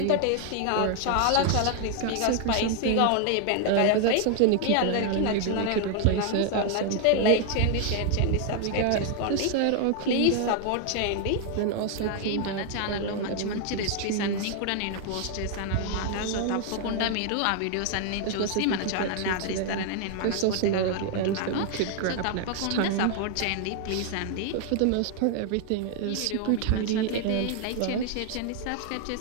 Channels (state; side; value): different; both; correlation 0.00